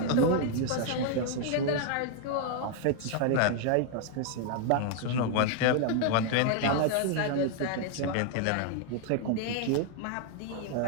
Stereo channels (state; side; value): different; both; correlation 0.00